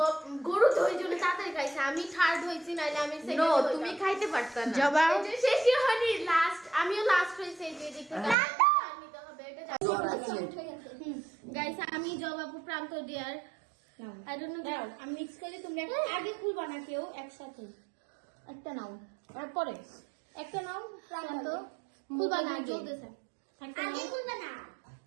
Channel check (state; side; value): drops out; left; at 8.3 s